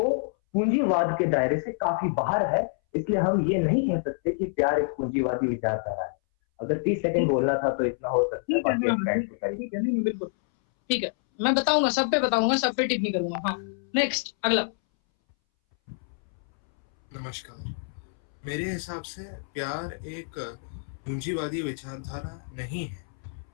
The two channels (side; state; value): right; silent; 60 dB below the other